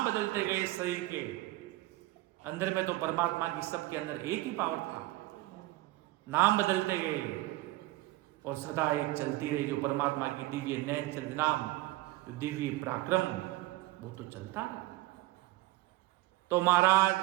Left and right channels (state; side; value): quieter; left; 18.5 dB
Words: बदलते गए, शरीर के अंदर में तो परमात्मा की सबके अंदर एक ही पावर था। नाम बदलते गए और सदा एक चलती रही, जो परमात्मा की दिव्य नैन चरित नाम, दिव्य पराक्रम, वो तो चलता। तो महाराज